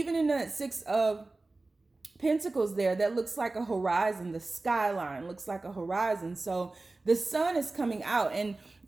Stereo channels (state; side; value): quieter; left; 3.2 dB